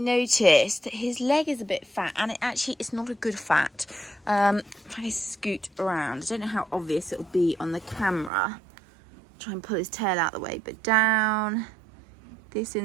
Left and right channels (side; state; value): left; drops out; at 8.3 s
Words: noticed that his leg is a bit fat, and it's not a good fat. If I scoot around, I don't know how obvious it'll be on the camera. Try and pull his tail out of the way, but down. This